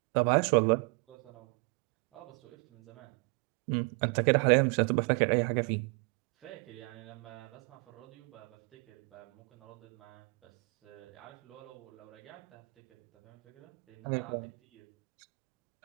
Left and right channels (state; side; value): quieter; left; 33.2 dB